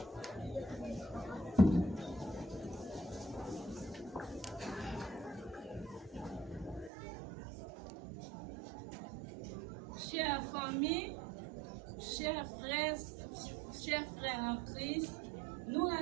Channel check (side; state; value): left; drops out; at 6.9 s